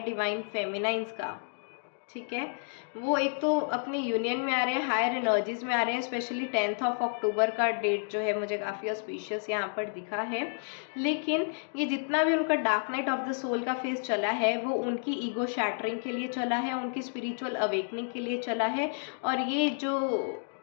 डिवाइन फेमिनाइंस का। ठीक है, वो एक तो अपनी यूनियन में आ रहे हैं, हायर एनर्जीज में आ रहे हैं। स्पेशली 10 अक्टूबर का डेट जो है मुझे काफ़ी ऑस्पिशियस यहाँ पर दिखा है। लेकिन ये जितना भी उनका dark night of the soul का फेज चला है वो उनकी ईगो शैटरिंग के लिए चला है, उनकी स्पिरिचुअल अवेकनिंग के लिए चला है। और ये जो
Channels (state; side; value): silent; right; 55 dB below the other